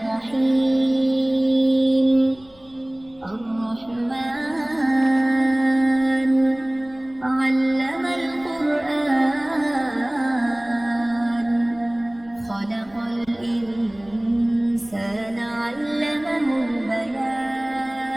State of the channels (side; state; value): left; noise; rumble, 28 dB below the sound